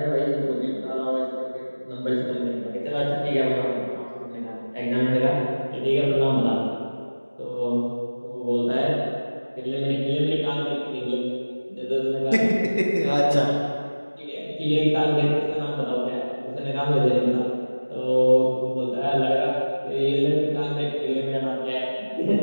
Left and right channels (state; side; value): inverted; both; correlation -1.00